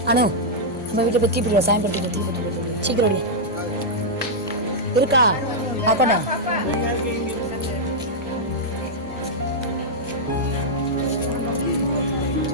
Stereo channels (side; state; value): both; normal; correlation -0.06